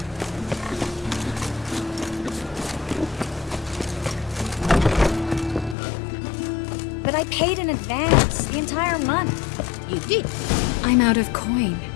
But I paid in advance, the entire month. You did. I'm out of coin.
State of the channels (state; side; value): drops out; right; at 5.8 s